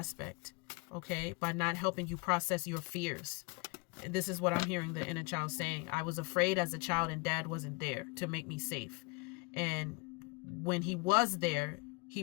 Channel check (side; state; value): right; quieter; 27.9 dB